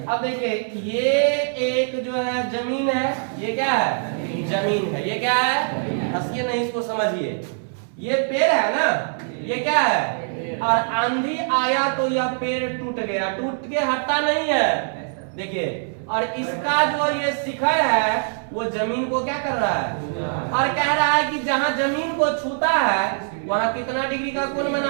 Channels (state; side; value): silent; left; 64 dB below the other